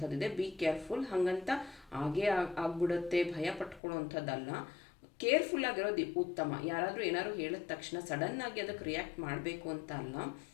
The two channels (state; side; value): drops out; right; at 3.8 s